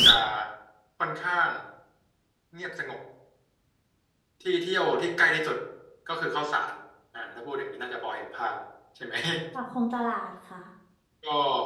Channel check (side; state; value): both; identical; correlation 1.00